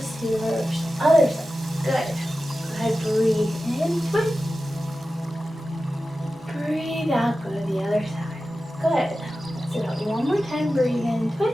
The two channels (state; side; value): normal; both; correlation 0.94